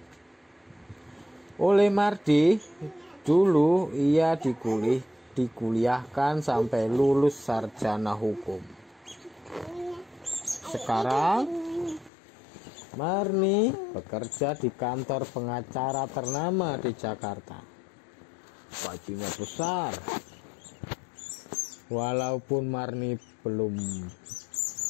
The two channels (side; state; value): right; drops out; at 12.1 s